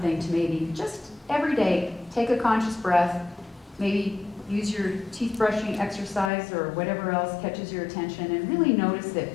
to maybe just every day take a conscious breath, maybe use your teeth brushing exercise or whatever else catches your attention, and really notice it,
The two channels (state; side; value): drops out; right; at 6.3 s